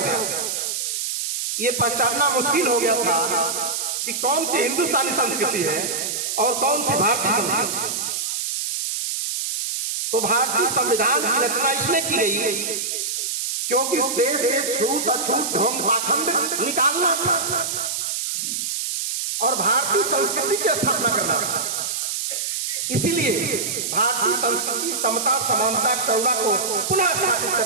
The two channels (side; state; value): right; noise; hiss, 2 dB below the sound